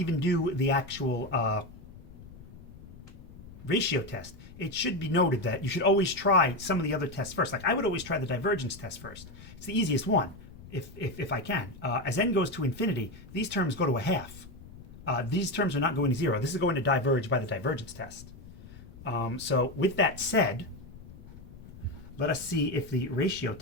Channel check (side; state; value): left; noise; rumble, 17 dB below the sound